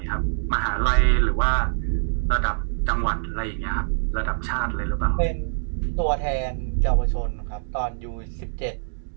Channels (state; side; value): silent; left; digital silence